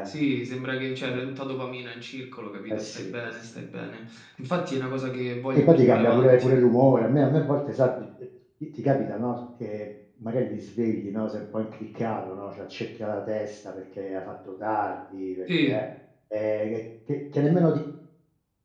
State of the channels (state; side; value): identical; both; correlation 1.00